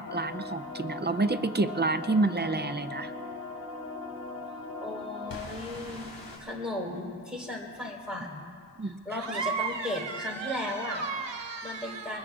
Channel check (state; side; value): normal; both; correlation 0.35